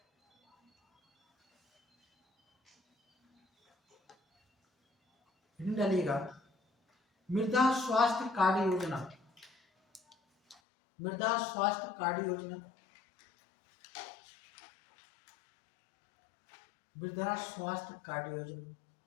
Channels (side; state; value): right; drops out; at 10.6 s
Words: डालिएगा, मृदा स्वास्थ्य कार्ड योजना।